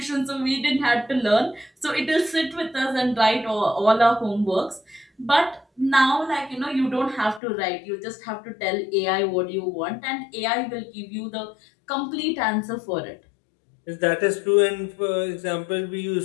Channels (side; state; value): right; drops out; at 7.4 s